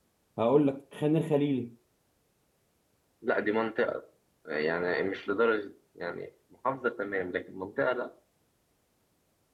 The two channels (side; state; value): both; identical; correlation 1.00